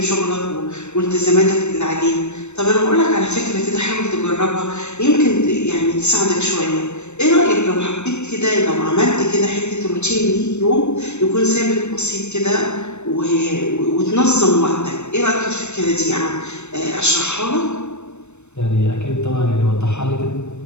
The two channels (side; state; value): right; late; 0.82 ms